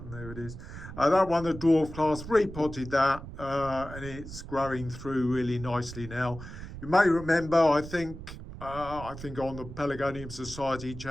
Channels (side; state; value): right; noise; rumble, 12 dB below the sound